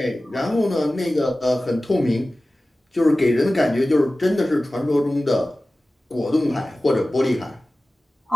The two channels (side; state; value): both; normal; correlation 0.96